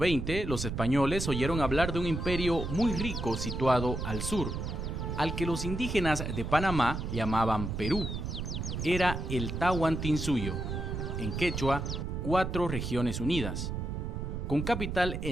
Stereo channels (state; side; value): noise; right; rumble, 4 dB below the sound